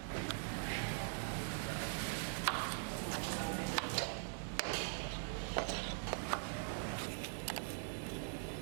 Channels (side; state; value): left; silent; digital silence